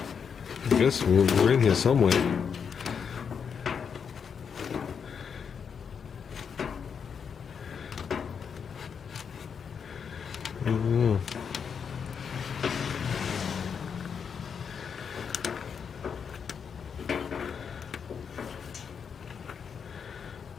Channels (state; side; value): quieter; right; 6.7 dB